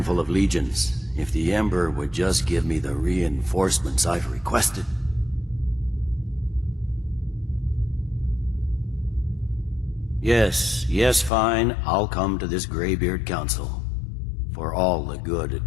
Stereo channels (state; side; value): drops out; right; at 11.3 s